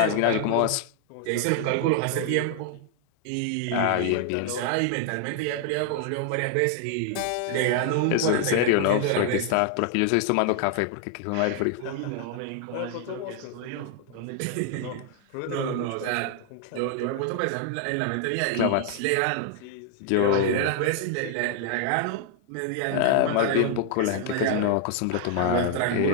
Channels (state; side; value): different; both; correlation 0.00